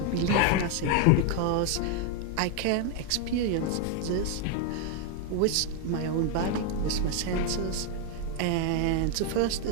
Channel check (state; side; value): different; both; correlation 0.01